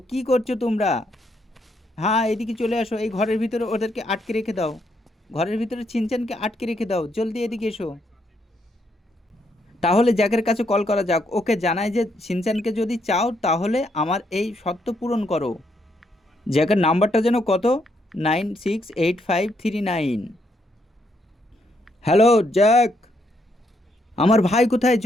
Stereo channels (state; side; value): normal; both; correlation 0.75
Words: কি করছো তোমরা? হ্যাঁ এদিকে চলে আসো, এই ঘরের ভিতরে ওদেরকে আটকে রেখে দাও, ঘরের ভিতরে ছিনচানকে আটকে রেখে দাও, জলদি এদিকে এসো। তাহলে জ্যাকের কাছে কল করা যাক, ওকে জানাই যে ছিনচানকে যদি চাও তাহলে আমার এই শর্ত পূরণ করো। জ্যাকের নাম্বারটা যেন কত? 968539। হ্যালো জ্যাক, আমার ভাই কোথায়